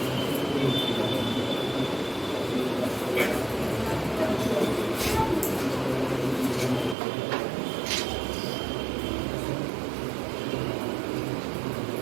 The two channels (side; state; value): left; drops out; at 7.0 s